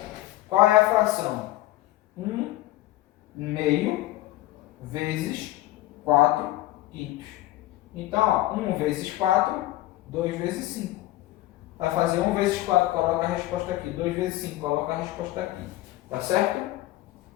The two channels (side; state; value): right; quieter; 16.5 dB